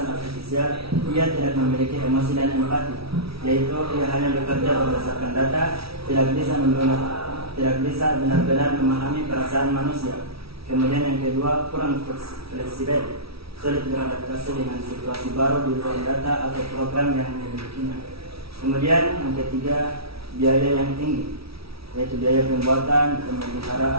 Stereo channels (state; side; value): late; left; 0.76 ms